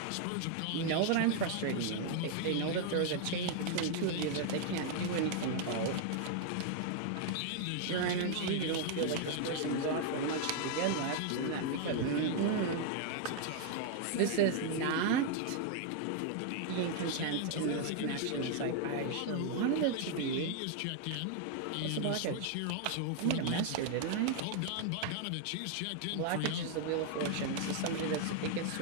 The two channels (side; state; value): both; different; correlation 0.00